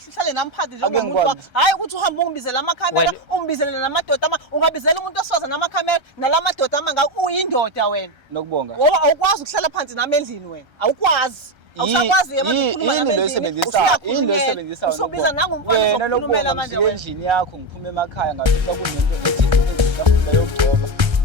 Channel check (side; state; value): left; late; 1.3 ms